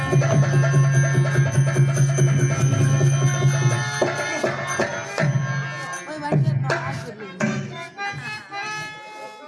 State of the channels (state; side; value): identical; both; correlation 1.00